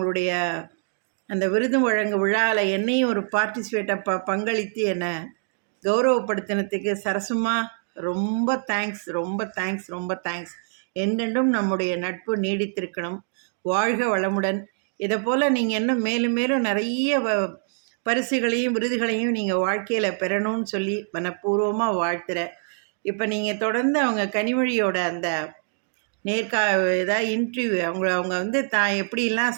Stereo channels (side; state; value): left; silent; digital silence